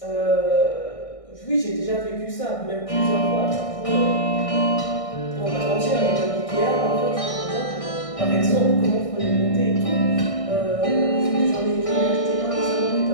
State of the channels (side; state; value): right; late; 1.6 ms